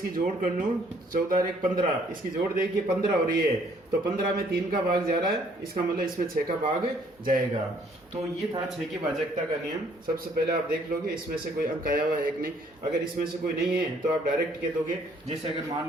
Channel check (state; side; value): normal; both; correlation 0.63